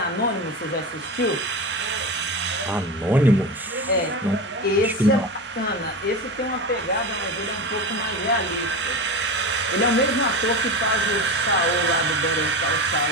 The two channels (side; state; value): both; normal; correlation 0.24